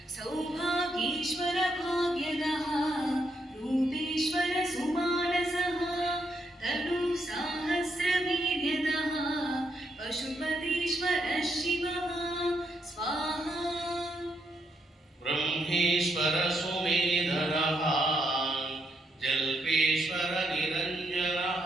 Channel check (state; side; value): normal; both; correlation 0.78